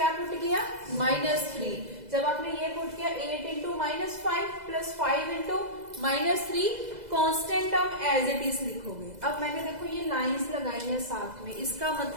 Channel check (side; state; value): left; late; 2.0 ms